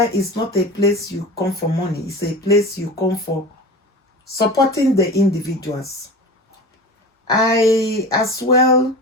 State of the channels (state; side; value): normal; both; correlation 0.33